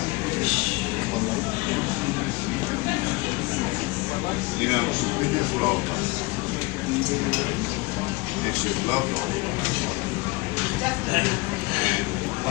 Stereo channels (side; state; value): right; quieter; 24.4 dB